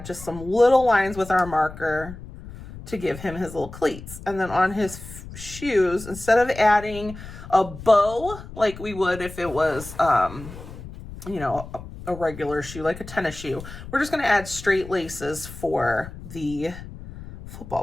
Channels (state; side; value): noise; left; rumble, 14 dB below the sound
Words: just some little lines with our marker to give him his little cleats. And then on his shoes, instead of adding a bow like we would if it was, you know, a regular shoe, like a tennis shoe, we're just going to add straight laces for the